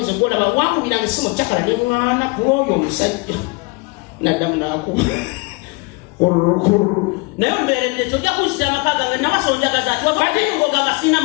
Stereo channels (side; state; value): right; quieter; 27.3 dB